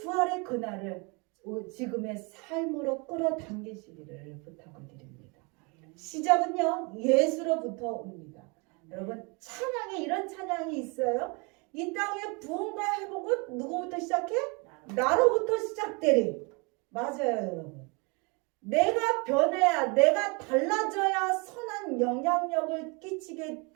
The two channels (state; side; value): quieter; left; 30.9 dB